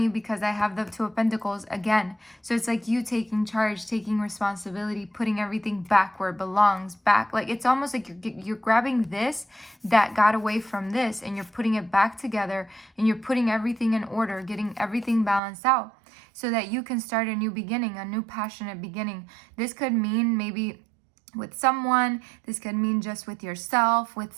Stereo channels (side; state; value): left; drops out; at 15.4 s